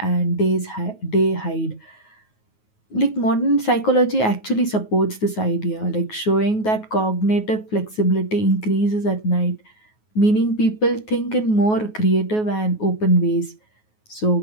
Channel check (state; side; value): late; right; 9.4 ms